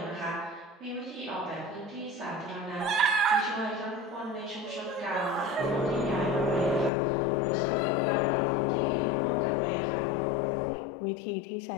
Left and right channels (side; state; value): right; drops out; at 6.9 s